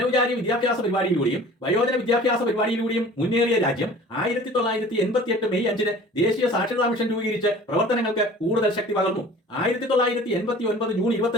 വിദ്യാഭ്യാസ പരിപാടിയിലൂടെയും വയോജന വിദ്യാഭ്യാസ പരിപാടിയിലൂടെയും മുന്നേറിയ രാജ്യം 1988 മെയ് 5 ദേശീയ സാക്ഷരതാ മിഷൻ രൂപീകരിച്ച് പ്രവർത്തനങ്ങൾക്ക് കൂടുതൽ ശക്തി പകർന്നു. 1989 ജൂൺ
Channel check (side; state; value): both; normal; correlation 0.45